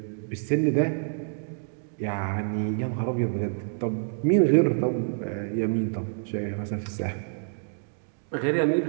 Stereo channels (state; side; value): silent; left; digital silence